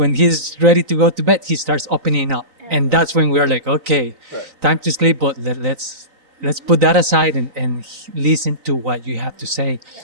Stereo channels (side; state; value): left; late; 3.9 ms